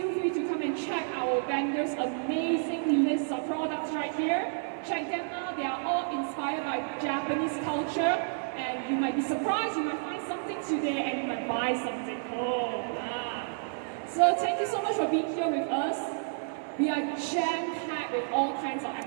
free to come and check our vendors' amazing list of products right here. Check them out. They are all inspired by Japanese culture. And you might be surprised, you might find something today and you might buy something. So thank you so much for being here with us. We are jam-packed with all kinds of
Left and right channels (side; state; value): left; silent; 58 dB below the other